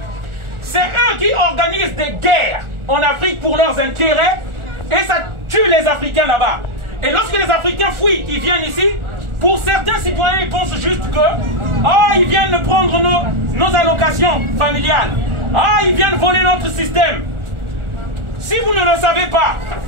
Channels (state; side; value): late; left; 1.4 ms